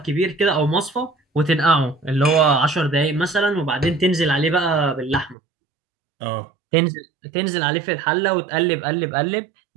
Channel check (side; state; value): left; drops out; at 5.4 s